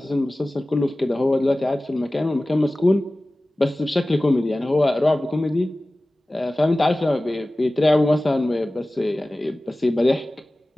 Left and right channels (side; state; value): both; normal; correlation 0.97